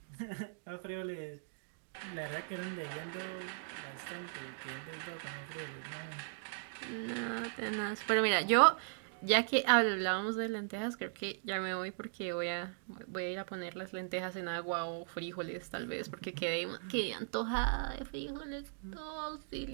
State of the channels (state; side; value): silent; left; digital silence